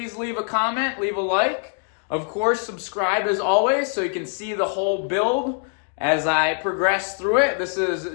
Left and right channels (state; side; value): silent; right; 57 dB below the other